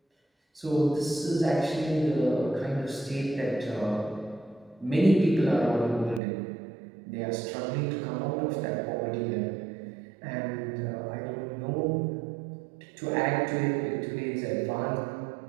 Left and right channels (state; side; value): drops out; left; at 6.2 s